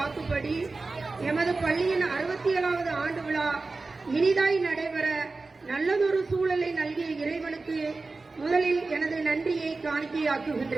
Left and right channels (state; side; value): quieter; left; 3.7 dB